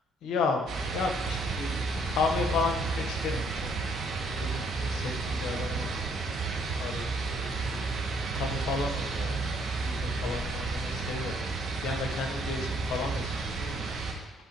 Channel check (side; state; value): both; normal; correlation 0.67